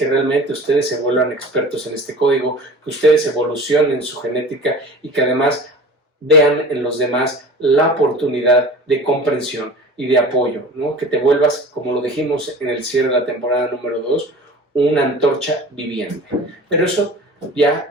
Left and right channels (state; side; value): normal; both; correlation 0.39